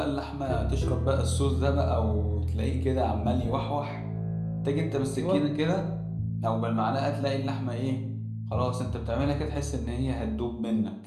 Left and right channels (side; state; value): both; identical; correlation 1.00